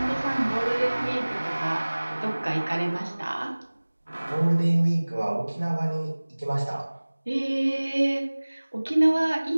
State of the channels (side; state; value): both; inverted; correlation -1.00